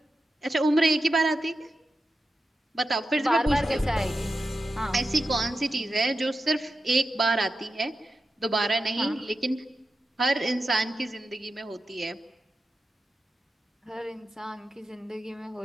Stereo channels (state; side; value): normal; both; correlation 0.91